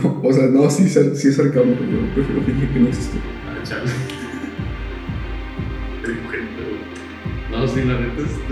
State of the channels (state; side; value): identical; both; correlation 1.00